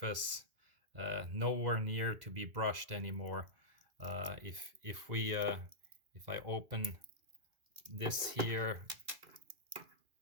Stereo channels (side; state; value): left; late; 2.4 ms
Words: nowhere near to be brushed anymore. If I open this here,